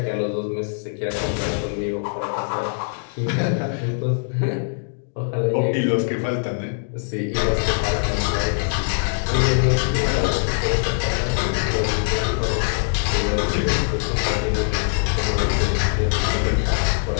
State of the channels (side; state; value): right; silent; digital silence